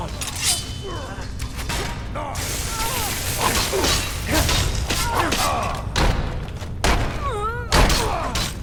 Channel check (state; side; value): identical; both; correlation 1.00